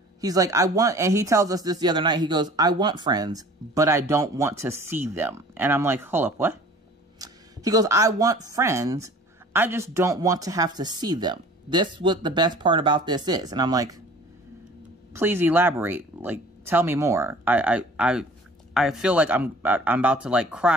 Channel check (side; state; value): both; normal; correlation 0.47